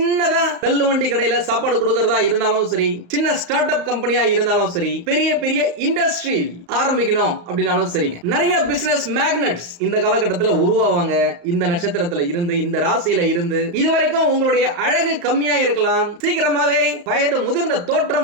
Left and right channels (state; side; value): late; left; 34 ms